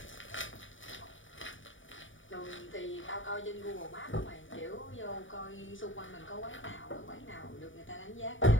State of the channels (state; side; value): late; right; 0.57 ms